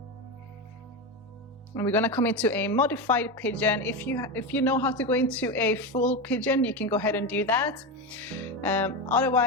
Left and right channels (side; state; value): both; normal; correlation 0.16